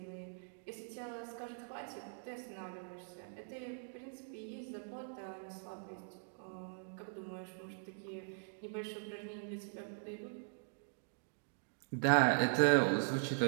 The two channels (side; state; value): left; silent; digital silence